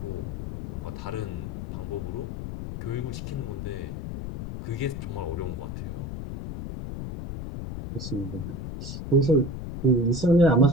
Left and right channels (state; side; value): noise; left; rumble, 6 dB below the sound